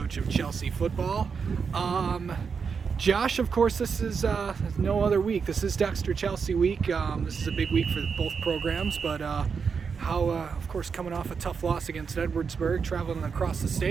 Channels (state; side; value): quieter; left; 5.8 dB